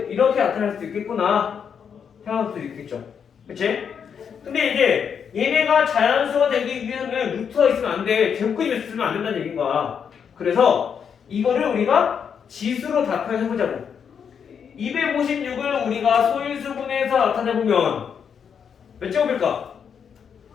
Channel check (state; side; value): quieter; right; 7.2 dB